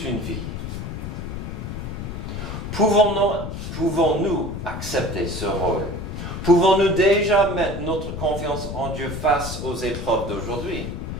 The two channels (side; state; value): left; noise; rumble, 6 dB below the sound